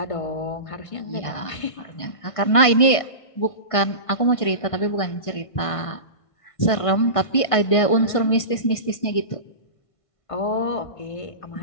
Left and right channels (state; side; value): late; right; 1.5 ms